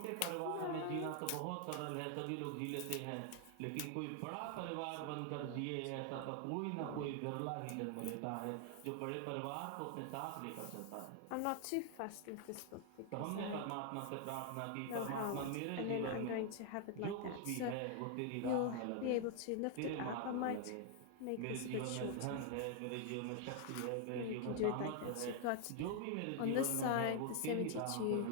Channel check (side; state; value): both; different; correlation 0.00